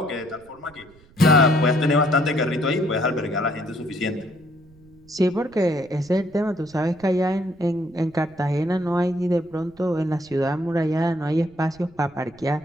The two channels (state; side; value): noise; right; rumble, 27 dB below the sound